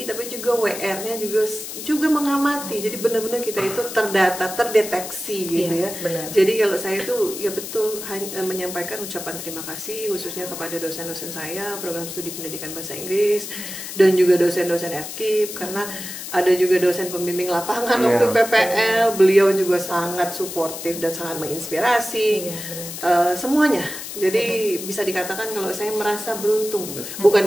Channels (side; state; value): left; noise; hiss, 9 dB below the sound